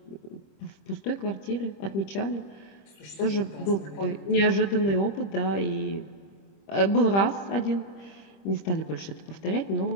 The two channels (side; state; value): right; late; 25 ms